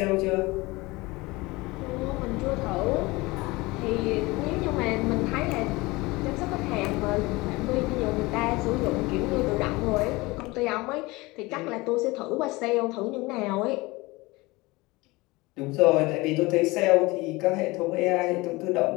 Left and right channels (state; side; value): quieter; right; 22.4 dB